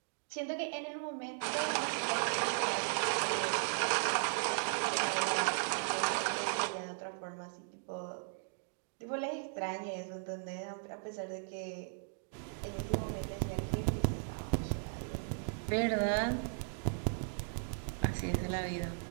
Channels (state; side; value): silent; left; digital silence